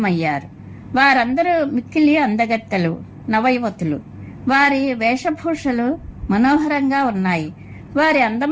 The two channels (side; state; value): both; identical; correlation 1.00